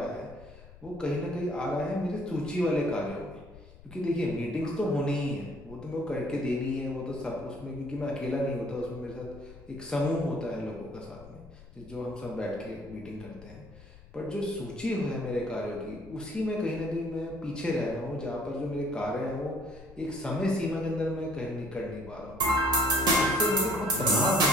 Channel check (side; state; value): left; noise; rumble, 19 dB below the sound